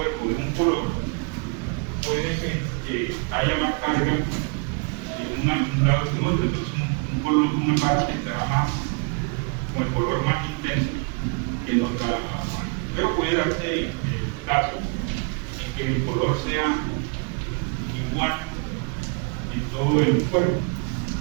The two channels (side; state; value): left; quieter; 33.4 dB